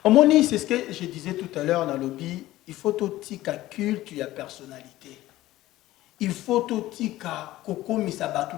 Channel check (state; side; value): quieter; right; 16.0 dB